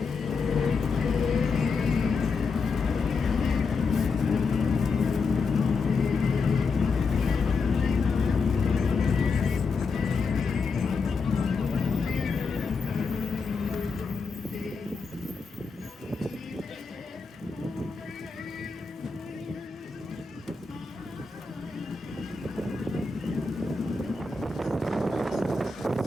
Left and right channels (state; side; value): quieter; right; 4.5 dB